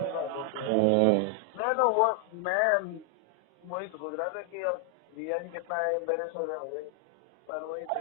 बात होती है। मैं वही तो सोच रहा था कि अब जिया जी कितना एम्बेरेस हो गए, पर वही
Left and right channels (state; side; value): normal; both; correlation 0.00